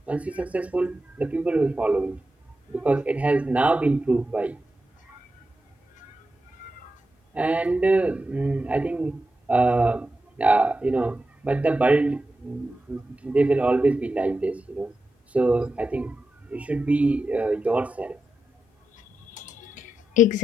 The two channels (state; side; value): normal; both; correlation 0.90